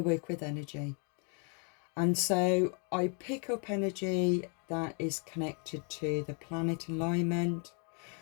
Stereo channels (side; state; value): right; quieter; 38.4 dB